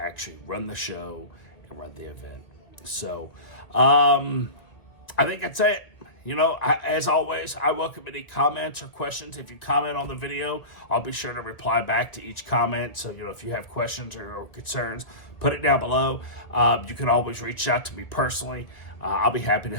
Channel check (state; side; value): late; right; 1.9 ms